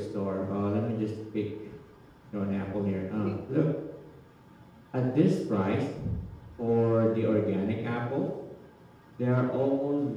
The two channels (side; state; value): both; identical; correlation 1.00